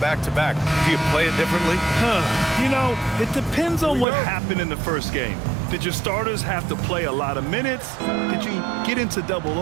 do you play it differently? You know, it depends on what happened in the first game. Did your starters have to play a lot of minutes? Did you get into double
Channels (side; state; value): left; drops out; at 4.0 s